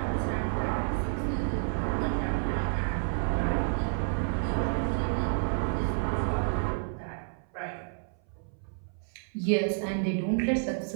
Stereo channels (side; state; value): left; silent; 58 dB below the other